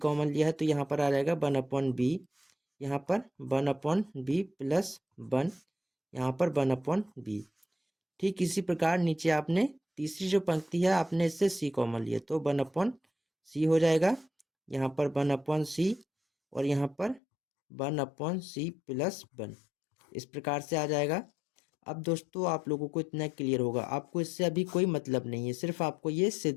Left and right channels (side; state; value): right; drops out; at 17.2 s